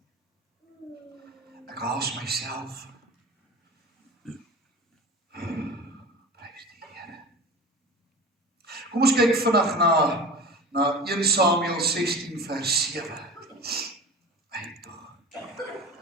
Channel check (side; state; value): both; normal; correlation 0.34